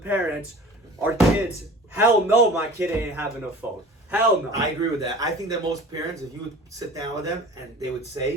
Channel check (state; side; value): normal; both; correlation 0.42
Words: our kids, hell no, my kid ain't having a phone. Hell no. I agree with that. I think that most parents, if you would sit down with them and they would